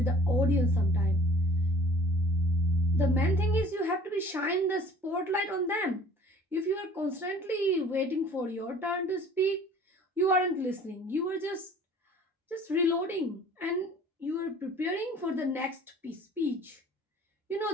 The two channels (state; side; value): normal; both; correlation 0.50